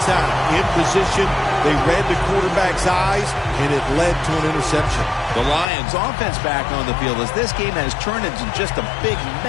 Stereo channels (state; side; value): drops out; right; at 5.7 s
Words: time. In position, they read the quarterback's eyes, and it led to an interception. The Lions offense back on the field as this game has turned into just a big